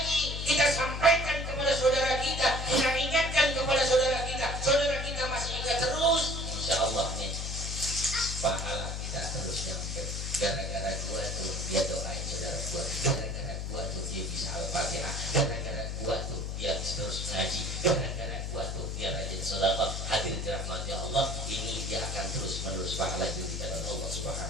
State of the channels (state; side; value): noise; left; hum, 4 dB below the sound